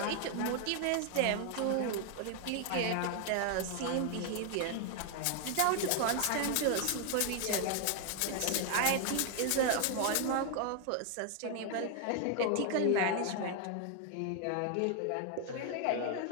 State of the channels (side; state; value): both; different; correlation 0.00